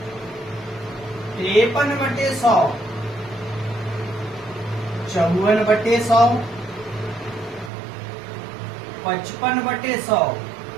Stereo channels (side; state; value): left; drops out; at 7.7 s